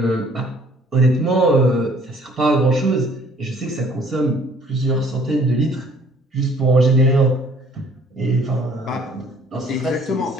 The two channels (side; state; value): both; normal; correlation 0.57